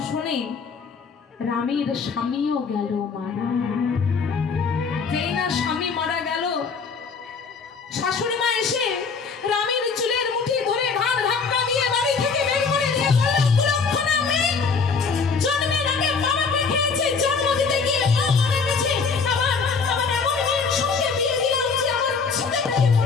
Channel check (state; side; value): quieter; right; 5.2 dB